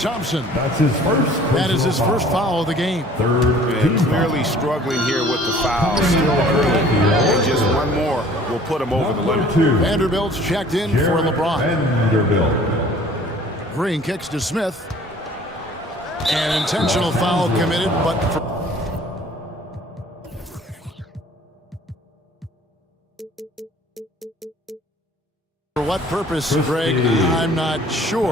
That's his first. That is his first foul of the game. Clearly struggling here with the foul. Still early. And just one more will put him over the limit. Vanderbilt's checked in for LeBron. Vanderbilt. Green kicks to Smith. An intentional foul committed, but for what purpose, Greg? I'm not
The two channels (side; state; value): both; normal; correlation 0.52